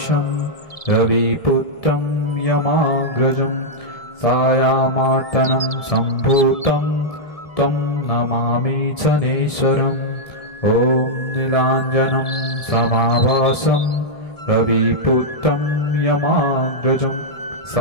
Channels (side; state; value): right; late; 1.7 ms